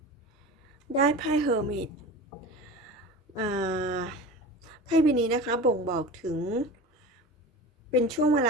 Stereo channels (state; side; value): normal; both; correlation 0.32